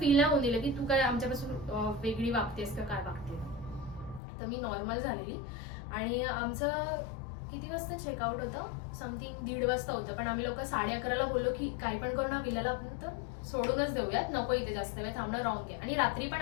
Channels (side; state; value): right; drops out; at 4.2 s